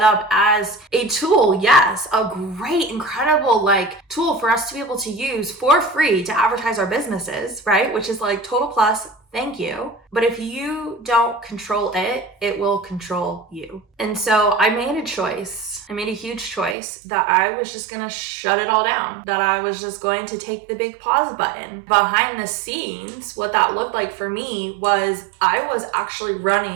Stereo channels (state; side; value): drops out; left; at 16.8 s